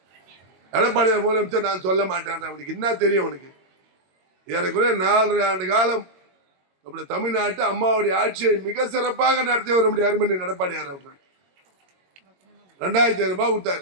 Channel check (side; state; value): left; late; 22 ms